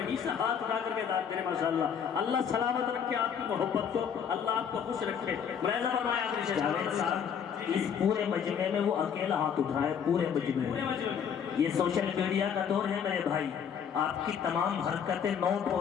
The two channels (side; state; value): right; quieter; 7.7 dB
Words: سے ہاتھ اٹھا کر کے داد دے ماشاءاللہ، اللہ سلامت رکھے آپ کی محبت کو، اللہ آپ کو خوش رکھے۔ ملاحظہ فرمائے آخری شعر، اس پورے مجمع میں وہ اکیلا ہاتھ اٹھائے، پورے مجمع میں۔ یہ سوشل میڈیا کا دور ہے میرے بھائی، آپ کی تمام حرکتیں نوٹ